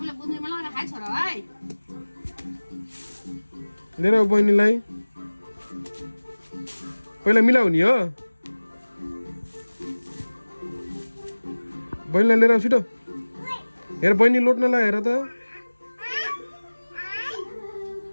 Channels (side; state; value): both; inverted; correlation -1.00